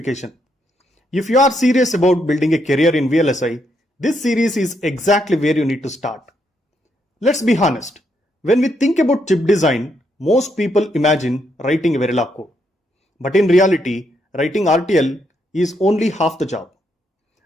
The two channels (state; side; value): normal; both; correlation 0.77